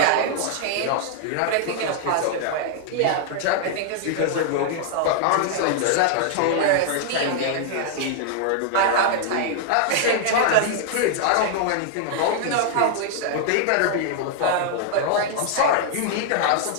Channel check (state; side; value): different; both; correlation -0.01